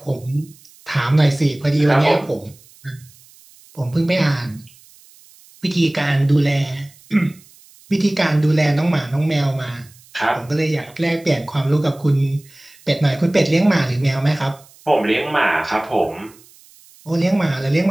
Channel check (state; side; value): noise; right; hiss, 26 dB below the sound